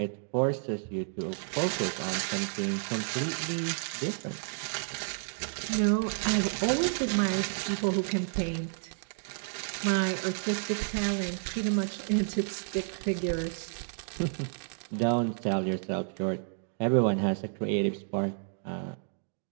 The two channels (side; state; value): left; silent; digital silence